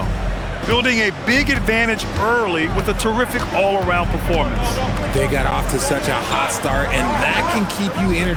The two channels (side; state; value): both; identical; correlation 1.00